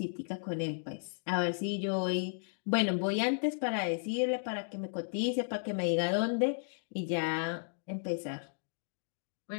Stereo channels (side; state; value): right; silent; digital silence